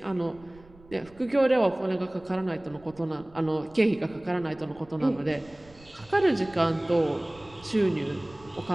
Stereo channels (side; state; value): right; noise; rumble, 24 dB below the sound